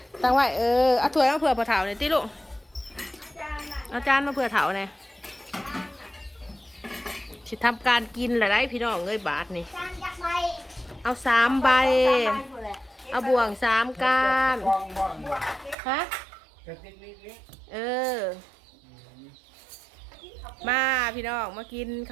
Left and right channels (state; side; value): drops out; left; at 15.8 s